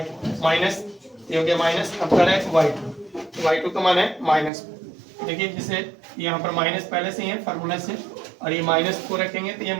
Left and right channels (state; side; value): drops out; left; at 4.5 s